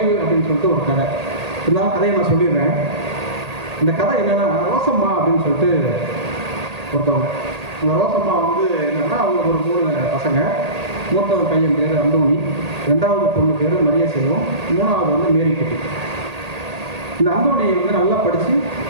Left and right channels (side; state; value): left; late; 1.8 ms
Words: அப்படின்னு சொல்லிட்டு ஒரு கதை. இருந்தாலும் கதையை நான் சொல்லிடுறேன். இந்த கதை என்னன்னா, ரோசம்மா அப்படின்னு சொல்லிட்டு ஒருத்தவங்க. அந்த ரோசம்மா வந்து என்னன்னா, அவங்களுக்கு ஒரு 3 பசங்க. மூத்தவன் பையன் பேர் அந்தோணி, 2வது பொண்ணு பேர் மரிய செல்வம், 3வது வந்து மேரிக்குட்டி. இந்த அந்தோணியை வந்து நல்லா படித்து